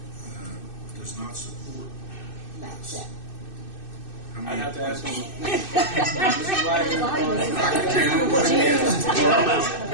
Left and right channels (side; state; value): right; late; 2.6 ms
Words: does not support That's this? it. How I'd many have to ask them. Mr.